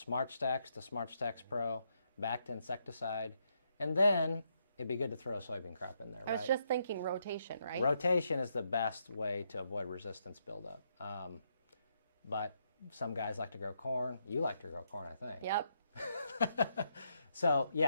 Stacks to Smart Stacks Pro, back to insecticide, and then it'd be good to throw a soybean crop in there, I right? was just thinking rotation, right? Rotation is the best way to avoid resistance buildup. But some guys like to grow corn. You like to grow corn, I think. Yep. So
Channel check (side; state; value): both; inverted; correlation -0.78